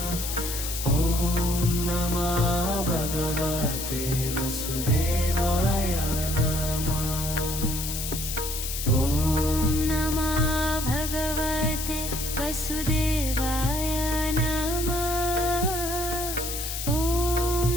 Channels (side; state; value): left; noise; hiss, 5 dB below the sound